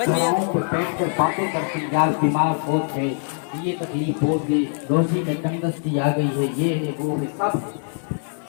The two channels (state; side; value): silent; right; 59 dB below the other